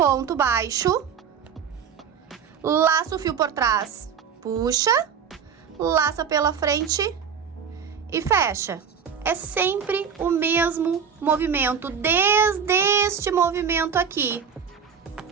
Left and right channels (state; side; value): quieter; left; 7.0 dB